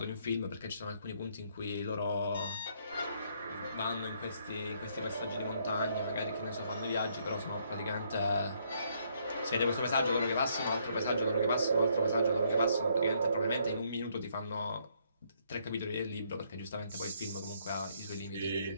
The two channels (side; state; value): both; inverted; correlation -0.70